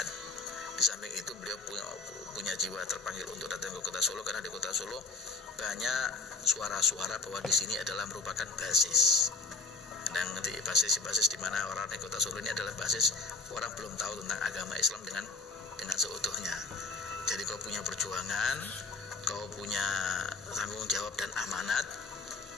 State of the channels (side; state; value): right; quieter; 4.2 dB